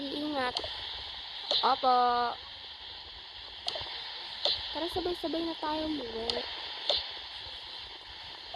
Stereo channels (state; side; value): identical; both; correlation 1.00